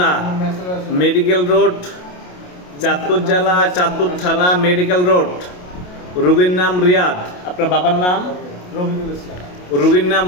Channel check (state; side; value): late; right; 28 ms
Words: medical road, Chandpur জেলা, চাঁদপুর থানা, মেডিকেল রোড। রুগীর নাম রিয়াদ। আপনার বাবার নাম? রফিকুল ইসলাম। রুগীর নাম